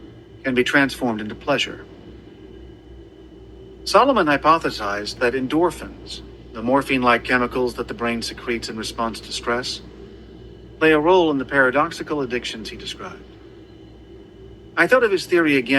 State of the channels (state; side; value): identical; both; correlation 1.00